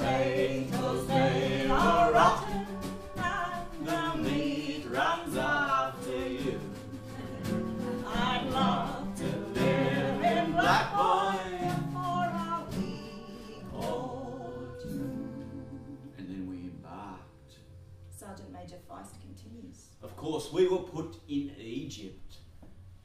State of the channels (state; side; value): identical; both; correlation 1.00